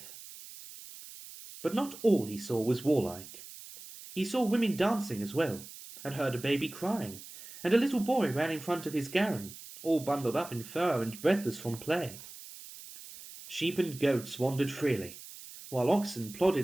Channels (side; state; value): right; noise; hiss, 15 dB below the sound